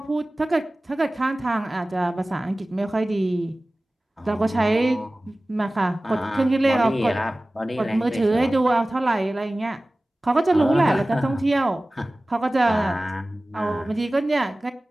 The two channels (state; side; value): normal; both; correlation 0.97